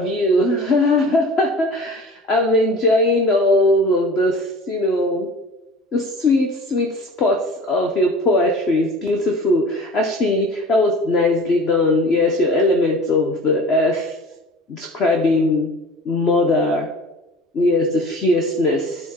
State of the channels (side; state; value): both; normal; correlation 0.41